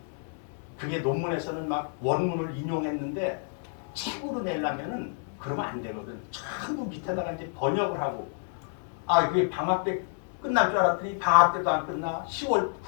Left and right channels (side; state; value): right; silent; 59 dB below the other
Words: 그게 논문에서는 막 원문을 인용했는데 책으로 내려면은 그러면 안 되거든. 전부 밑에다가 이제 번역을 하고 그게 방학 때 끝날 줄 알았더니 방학 때도 안 끝나.